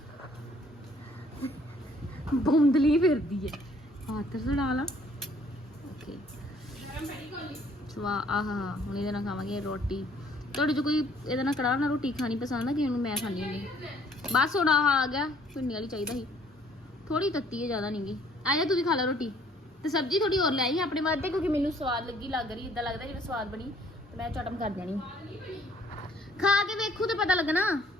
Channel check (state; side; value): normal; both; correlation 0.60